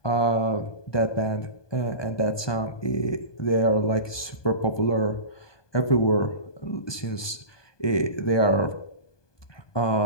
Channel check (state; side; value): late; right; 1.2 ms